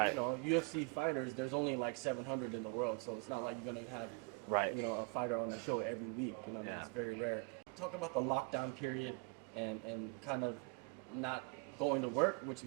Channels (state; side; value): quieter; left; 33.3 dB